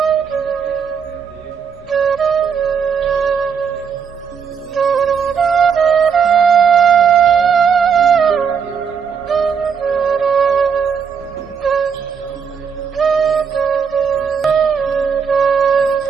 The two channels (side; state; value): left; quieter; 6.6 dB